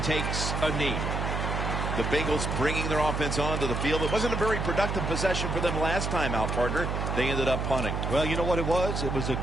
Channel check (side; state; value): right; noise; hum, 1 dB below the sound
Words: takes a knee. The Bengals bringing their offense onto the field. It wasn't a very productive possession for them last time out, partner. They ended up punting. Well, you know what it was? It was a